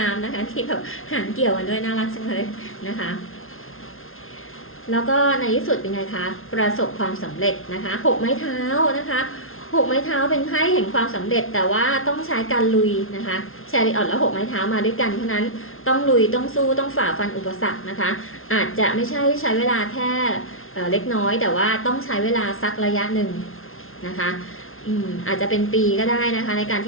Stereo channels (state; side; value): late; right; 0.61 ms